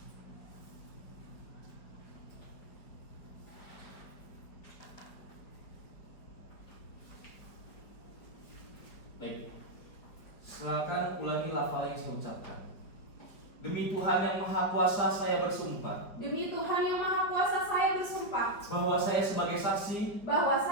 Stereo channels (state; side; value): late; right; 4.9 ms